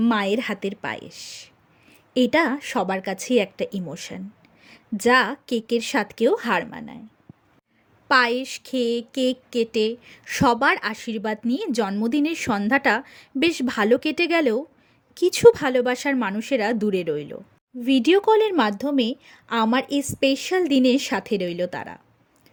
মায়ের হাতের পায়েস। এটা সবার কাছেই একটা ইমোশন, যা কেকের স্বাদকেও হার মানায়। পায়েস খেয়ে কেক কেটে সবার আশীর্বাদ নিয়ে জন্মদিনের সন্ধ্যাটা বেশ ভালো কেটে গেলেও কিছু ভালোবাসার মানুষেরা দূরে রইল। ভিডিও কলের মাধ্যমে আমার এই স্পেশাল দিনের সাথে রইল তারা।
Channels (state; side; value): identical; both; correlation 1.00